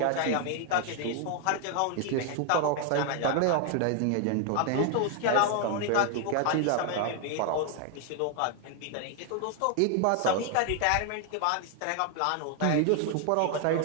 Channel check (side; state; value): both; different; correlation 0.00